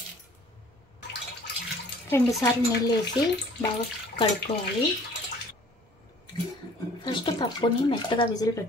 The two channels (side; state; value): both; normal; correlation 0.52